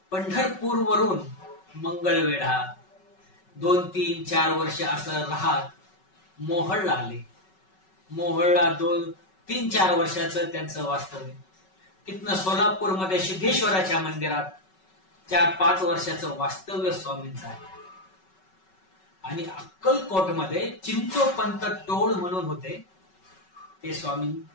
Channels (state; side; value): late; right; 5.3 ms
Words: पंढरपूरवरून मंगळवेढा 2, 3, 4 वर्ष असं राहत मोहोळला आले. मोहोळला 2, 3, 4 वर्षाचं त्यांचं वास्तव्य. तिथनं सोलापूरमध्ये सिद्धेश्वराच्या मंदिरात 4-5 वर्षाचं वास्तव्य स्वामींचं आहे. आणि अक्कलकोटमध्ये चिंचोपंत टोळ म्हणून होते, ते